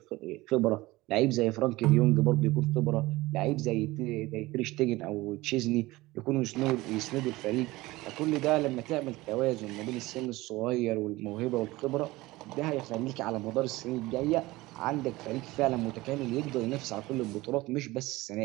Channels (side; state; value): left; quieter; 19.6 dB